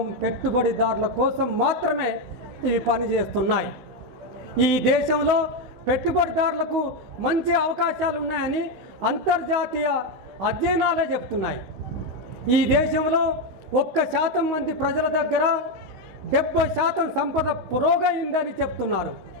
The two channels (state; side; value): late; left; 16 ms